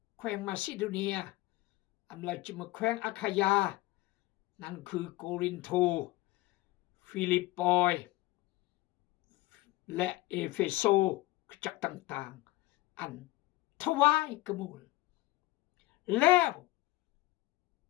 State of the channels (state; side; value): quieter; right; 18.7 dB